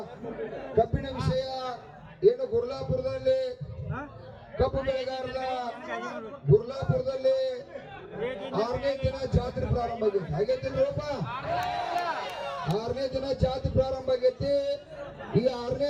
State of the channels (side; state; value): both; identical; correlation 1.00